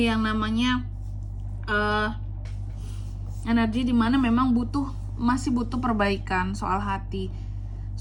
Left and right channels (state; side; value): identical; both; correlation 1.00